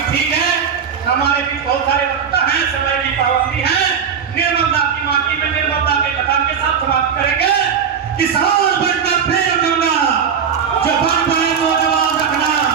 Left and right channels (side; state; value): left; quieter; 7.2 dB